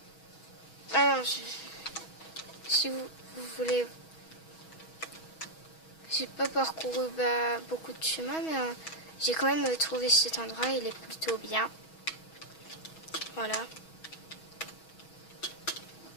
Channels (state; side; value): late; right; 6.2 ms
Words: Alors, si vous voulez... J'ai pas parcouru beaucoup de chemin, mais j'ai quand même trouvé cet endroit. Il est plutôt bien. Voilà.